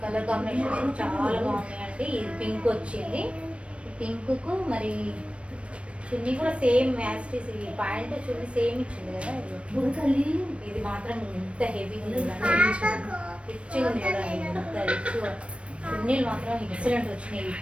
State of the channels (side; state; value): left; late; 0.061 ms